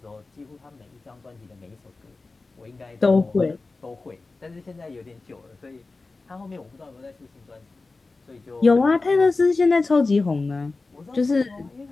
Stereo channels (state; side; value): quieter; right; 3.6 dB